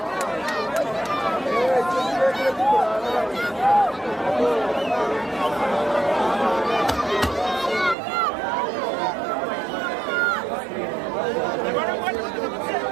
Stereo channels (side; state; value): left; drops out; at 8.0 s